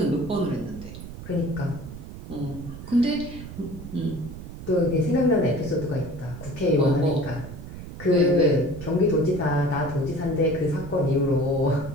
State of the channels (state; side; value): noise; right; rumble, 12 dB below the sound